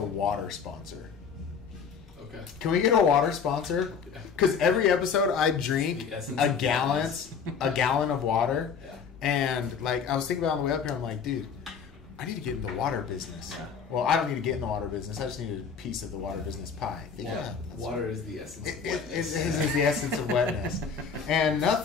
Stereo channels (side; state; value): right; quieter; 6.2 dB